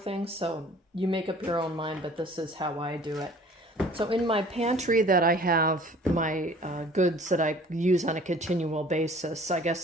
So you make up your own mind, but this is how I do it. So in my pantry that I have my goods that I use on a continual basis, I guess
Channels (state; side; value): normal; both; correlation 0.50